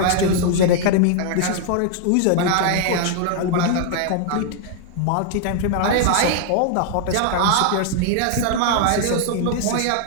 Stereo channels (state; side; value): different; both; correlation 0.00